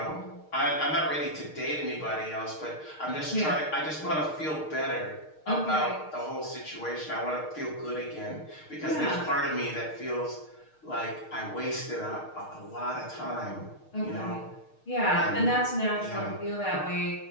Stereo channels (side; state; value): right; late; 6.5 ms